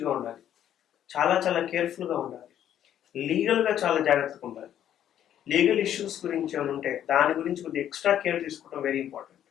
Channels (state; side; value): quieter; right; 10.6 dB